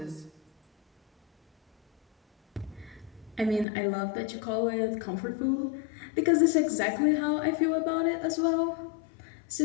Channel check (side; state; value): right; drops out; at 3.7 s